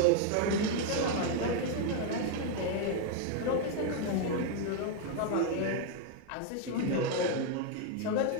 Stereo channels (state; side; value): different; both; correlation 0.00